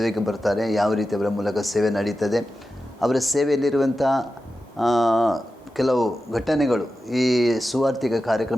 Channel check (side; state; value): both; normal; correlation 0.92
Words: ಬರ್ತಾರೆ, ಯಾವ ರೀತಿ ಅವರ ಮೂಲಕ ಸೇವೆ ನಡೀತದೆ, ಅವರ ಸೇವೆಯಲ್ಲಿರುವಂಥ ಕೆಲವು ಘಟನೆಗಳು ಈ ಸುವಾರ್ತಿಕ